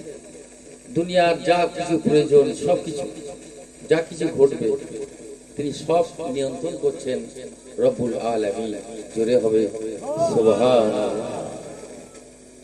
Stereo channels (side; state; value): both; identical; correlation 1.00